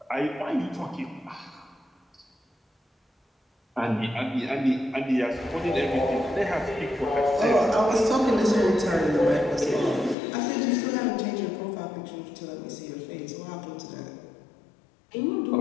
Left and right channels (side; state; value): right; drops out; at 10.2 s